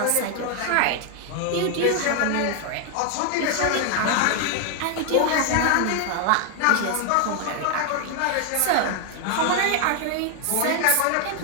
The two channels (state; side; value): different; both; correlation 0.00